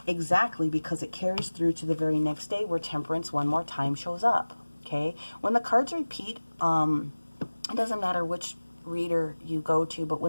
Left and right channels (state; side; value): inverted; both; correlation -1.00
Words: Exactly, because it carries through to the very next day where Temperance one more time shows up, okay? When the cards repeat, it doesn't matter which reader you go to, but